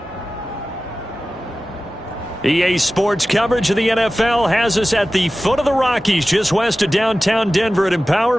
EA Sports coverage of the NFL has us at the foot of the Rockies, just west of downtown Denver at Empower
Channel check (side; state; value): both; normal; correlation 0.95